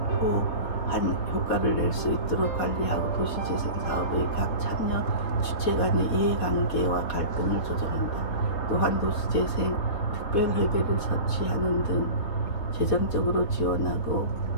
효과를 낼 수 있도록 관리하고 도시재생 사업의 각 참여 주체 간의 이해관계와 갈등을 조정한다. 또한 도시재생 특별회계를 설치하는 등 재정적으로 지원하고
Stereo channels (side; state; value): right; late; 4.1 ms